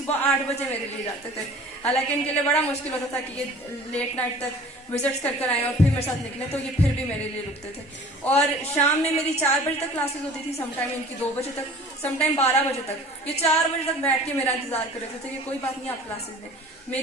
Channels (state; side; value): normal; both; correlation 0.46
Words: 8 बजे मेरे लिए जाते थे, हालांकि इनके लिए बड़ा मुश्किल होता था कि ये लेट नाइट तक विजिट्स कर आए और फिर मेरे साथ निकले, तो ये फिर भी मेरे लिए रुकते थे। और शाम में मेरी 4 बजे तक क्लासेस होती थी, समटाइम इनकी 2 बजे तक, समटाइम 12 बजे तक। ये 4 बजे तक बैठ के मेरा इंतजार कर रहे थे कि कोई बात नहीं, आप क्लासेस में।